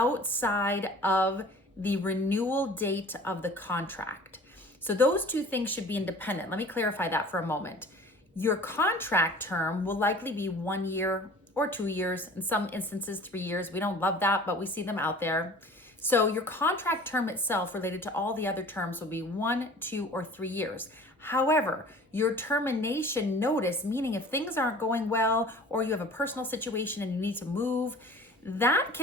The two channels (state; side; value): normal; both; correlation 0.45